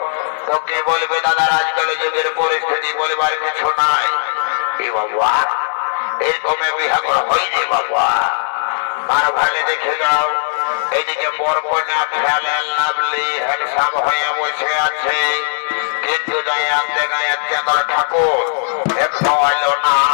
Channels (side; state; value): right; silent; digital silence